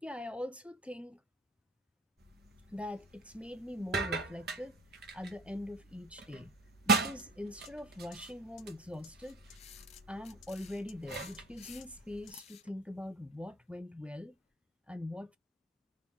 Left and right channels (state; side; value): normal; both; correlation 0.45